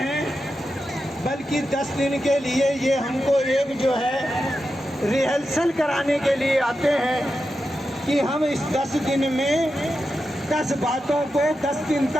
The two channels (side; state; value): both; normal; correlation 0.89